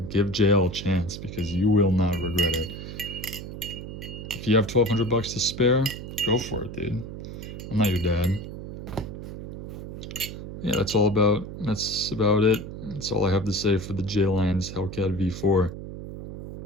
Give JL a chance, because you will not regret it. If you have 1,200 bucks to spare, go for it, dude. I'm not your dad. Yeah, that's about it. That's all I have to say for the JLyons Hellcat V4.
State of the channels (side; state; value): right; noise; hum, 9 dB below the sound